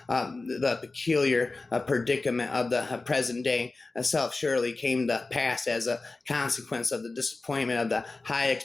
The peculiar predicament of the present day self surely came to pass as a consequence of the disappointment of the high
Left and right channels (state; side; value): quieter; right; 3.5 dB